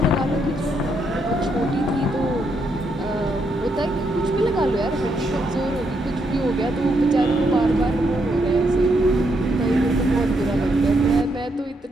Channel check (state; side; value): normal; both; correlation 0.78